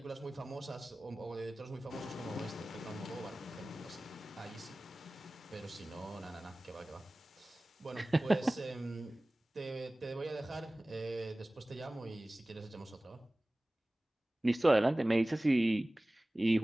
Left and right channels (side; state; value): both; normal; correlation 0.98